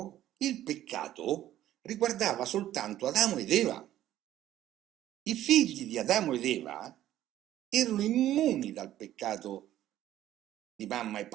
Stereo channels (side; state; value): left; quieter; 13.0 dB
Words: il peccato riguardava soltanto Adamo ed Eva. I figli di Adamo ed Eva erano immuni dal peccato di mamma e